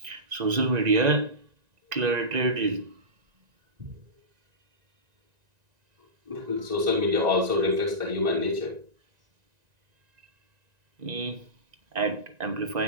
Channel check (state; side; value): late; left; 1.9 ms